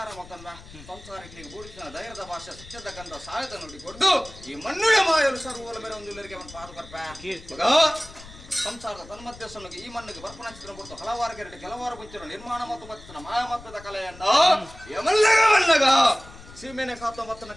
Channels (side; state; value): left; noise; rumble, 18 dB below the sound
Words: ಮತ್ತಂದ ಸಂಸಾರಿಕನಿಗೆ ಬೂಡಿಸಿನ ಧೈರ್ಯದ ಭಾಷೆ ಸತ್ಯದ ಗಂಧ ಸಾಯದ ನೋಡಿ ಕೊಟ್ಟು ಈ ಮಣ್ಣುಳ ಮಾಯಲು ಸರ್ವೋಲ ಮೇಲೆ ಒಂದು ಇಲ್ಲರಿಗೆ ಅವನು ಪಾದು ಬರ್ಪ ಸಂಸಾರದ ತನ್ಮಧ್ಯಸ್ಥನಿಗೆ ಈ ಮಣ್ಣಿಗೆ ಬರ್ಪಣ ಚಿತ್ರ ಕೊಟ್ಟು ಹಲವಾರು ಗೆರಟು ಕೆಲವಾರು ಮುಂಚಿನ ನಿರ್ಮಾಣ ಮತ್ತು ಬತ್ತಿನ ಮಾಯಮತ್ತದ ಕಲೆಯನ್ನ ಯಮಲ್ಲಗ ಸೀಮೆನೆ ಕಾತ ಮತ್ತನ